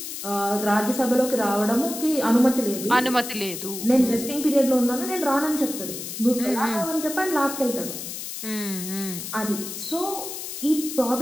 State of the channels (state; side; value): noise; left; hiss, 8 dB below the sound